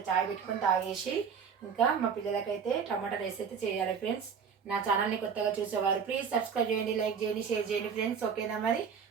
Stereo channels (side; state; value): left; quieter; 6.6 dB